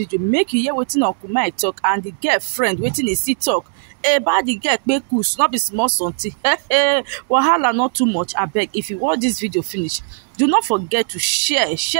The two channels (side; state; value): left; silent; digital silence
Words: make you hear wetin Uncle Mike talk and the girlfriend wetin he see talk. About the girl kpekus, not be small something. Wahala not too much. I beg, if you watch this video finish, do not forget to share